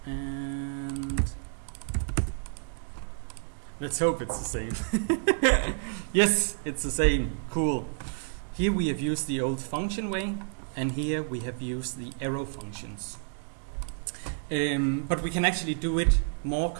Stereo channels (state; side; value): silent; left; digital silence